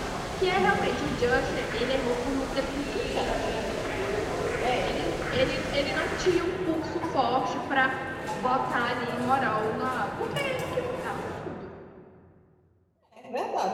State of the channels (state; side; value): identical; both; correlation 1.00